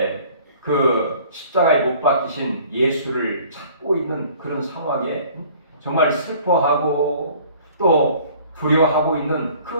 그 십자가에 못 박히신 예수를 찾고 있는 그런 상황에 정말 슬퍼하고 또 두려워하고 있는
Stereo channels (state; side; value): inverted; both; correlation -0.52